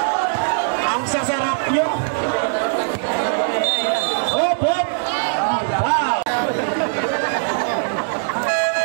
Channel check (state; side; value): silent; left; digital silence